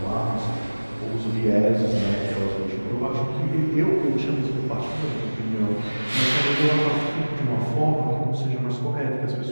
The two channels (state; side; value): inverted; both; correlation -1.00